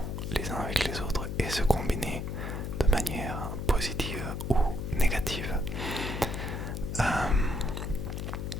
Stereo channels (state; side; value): noise; left; hum, 4 dB below the sound